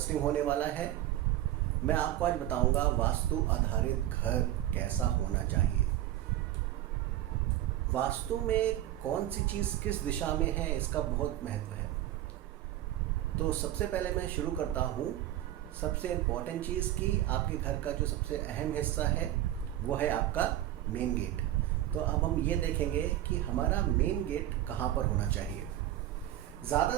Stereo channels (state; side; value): quieter; left; 13.5 dB